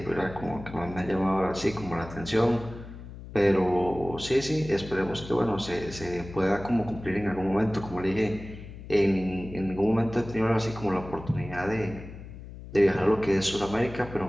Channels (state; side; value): noise; left; hum, 14 dB below the sound